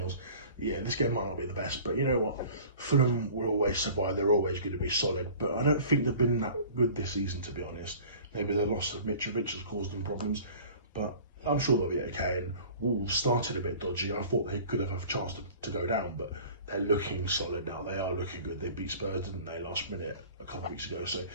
Yeah, this game might not be the best, but you know what? Fulham will always survive. They're always going to be solid, but I don't think they've been that good this season, to be honest. Maybe the loss of Mitrovic has caused them problems, but I'm sure they'll be okay. And Wolves started a bit dodgy. I thought they could have a chance to go down, but they're looking solid now. They are looking good. They beat Spurs, didn't they, last minute a couple of weeks ago? So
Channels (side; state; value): both; inverted; correlation -0.45